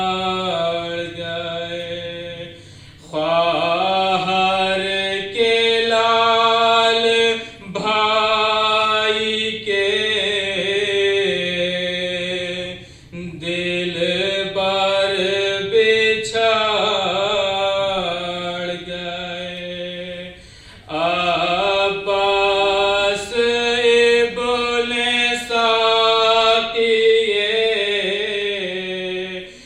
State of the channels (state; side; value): identical; both; correlation 1.00